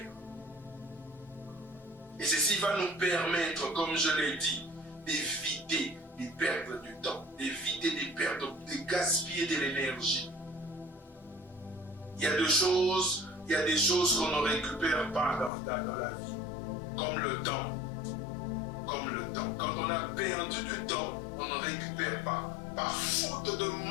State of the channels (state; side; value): drops out; right; at 15.5 s